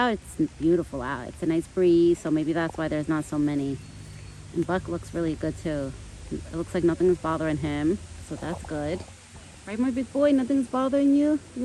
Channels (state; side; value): identical; both; correlation 1.00